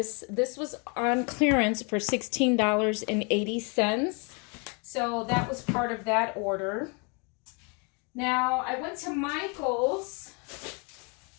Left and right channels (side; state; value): right; quieter; 33.5 dB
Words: This was on clearance for $16.80. So that was part of that order. Now I went to Michael's.